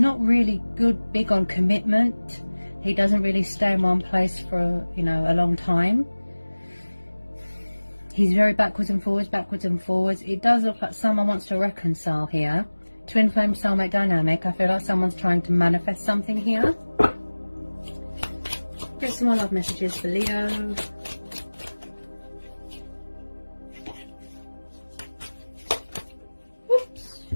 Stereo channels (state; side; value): inverted; both; correlation -1.00